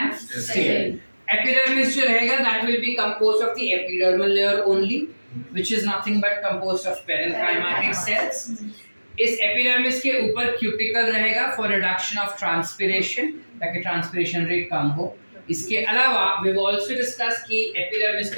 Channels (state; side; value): inverted; both; correlation -1.00